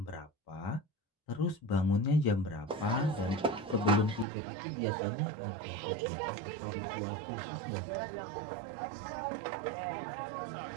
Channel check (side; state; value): left; drops out; at 4.2 s